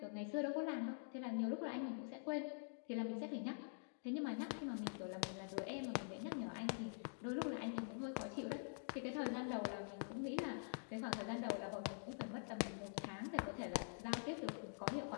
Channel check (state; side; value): silent; right; digital silence